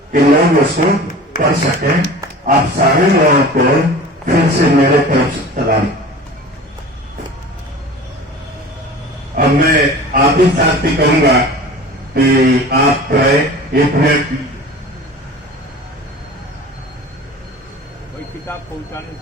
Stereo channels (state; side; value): normal; both; correlation 0.39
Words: کہ لوگ اس کو پڑھ سکیں. آپ سارے لوگوں کو پھر سے میرے طرف سے سلام. اب میں آپ ہی ساتھ بھی کہوں گا کہ آپ ایک منٹ کوئی کتاب پہنچانے